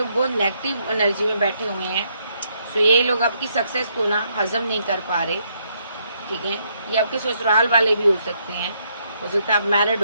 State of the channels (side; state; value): both; inverted; correlation -0.74